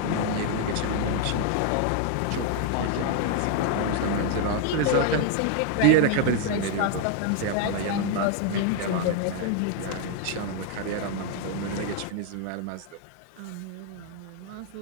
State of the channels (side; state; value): both; different; correlation 0.00